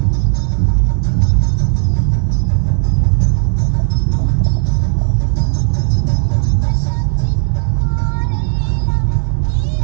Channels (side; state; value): left; silent; digital silence